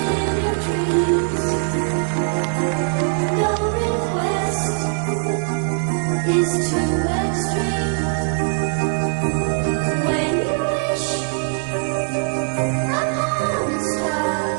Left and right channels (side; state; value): left; silent; digital silence